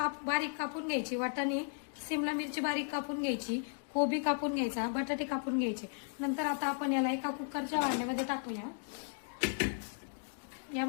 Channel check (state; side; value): silent; right; 54 dB below the other